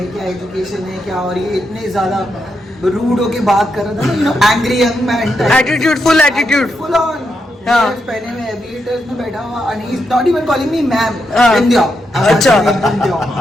क्या एजुकेशन है, क्या, और ये इतने ज्यादा रूड होके बात कर रहा था ना, angry young man, attitude, full attitude, full on. हाँ। पहने में एविएटर्स में बैठा हुआ and he's not even calling me ma'am. हाँ। बिंदिया। अच्छा। बिंदिया।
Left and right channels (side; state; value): both; normal; correlation 0.83